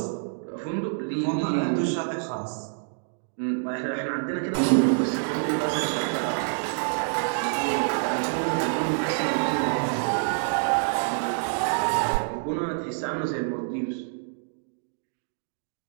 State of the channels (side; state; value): left; silent; digital silence